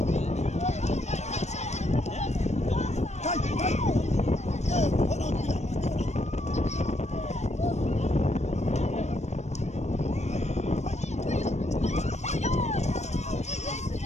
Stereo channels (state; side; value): late; right; 0.33 ms